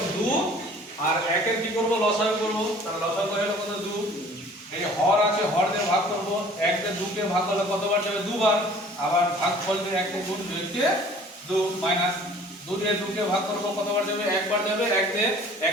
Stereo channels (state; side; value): normal; both; correlation 0.50